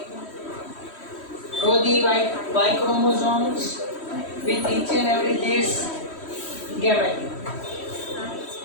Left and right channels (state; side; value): late; right; 3.1 ms